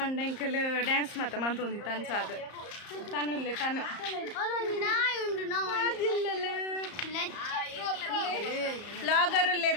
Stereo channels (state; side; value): late; right; 34 ms